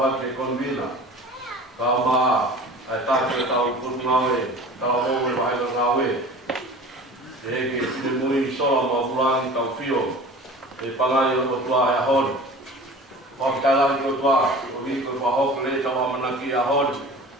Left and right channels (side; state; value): both; normal; correlation 0.40